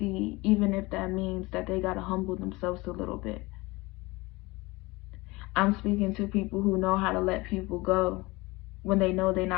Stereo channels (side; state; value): right; quieter; 22.6 dB